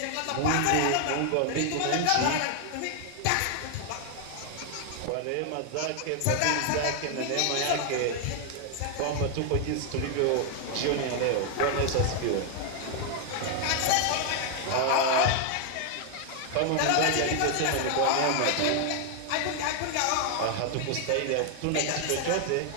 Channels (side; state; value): both; different; correlation 0.00